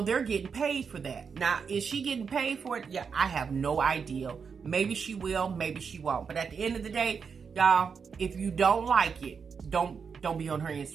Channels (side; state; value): left; quieter; 6.0 dB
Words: they're getting paid for that. Now, is she getting paid for it? Yeah, I have no idea. Maybe she will, maybe she won't. But at the end of the day, y'all, if you don't like it, don't be on her